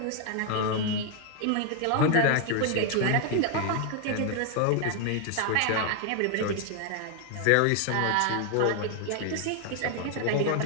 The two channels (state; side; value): different; both; correlation 0.00